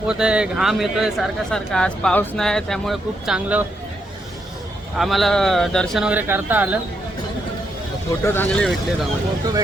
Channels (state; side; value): normal; both; correlation 0.79